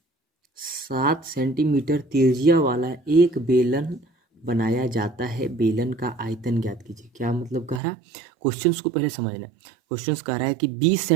7 सेंटीमीटर त्रिज्या वाला एक बेलन बनाया जाता है। बेलन का आयतन ज्ञात कीजिए। क्या मतलब कह रहा है, क्वेश्चंस को पहले समझना है। क्वेश्चंस कह रहा है कि 20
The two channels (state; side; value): drops out; left; at 7.8 s